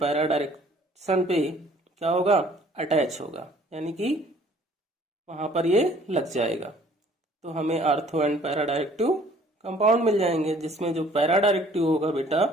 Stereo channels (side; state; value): both; normal; correlation 0.56